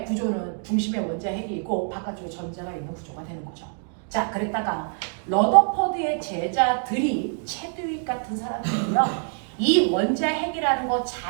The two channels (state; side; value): silent; left; 55 dB below the other